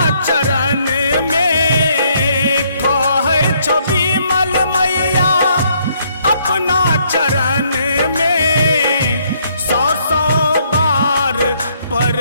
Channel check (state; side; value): inverted; both; correlation -0.69